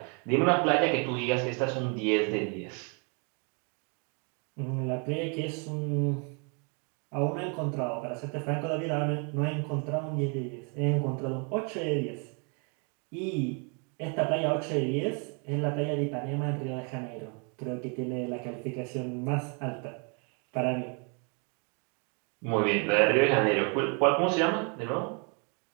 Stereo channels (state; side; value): quieter; left; 36.4 dB